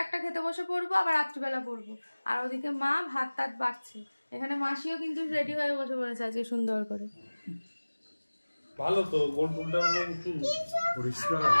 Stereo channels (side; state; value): both; inverted; correlation -1.00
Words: একটা খেতে বসে পরবো, আবার রাত্রিবেলা পরবো। আর ওদিকে মা ভাত টাত বাড়ছে। এখানে মাসিও কিন্তু রেডি হয়ে বসে পড়েছে আজকে সুন্দর করে। ভালো তো, গোল ফুলটা একটু পরিষ্কার